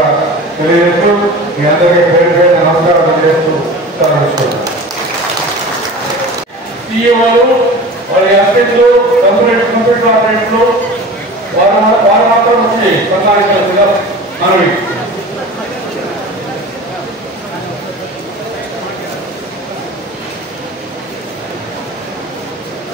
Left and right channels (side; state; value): both; normal; correlation 0.37